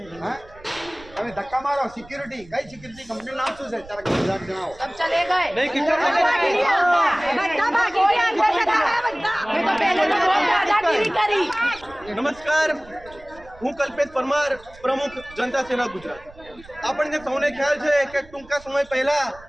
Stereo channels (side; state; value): right; noise; rumble, 22 dB below the sound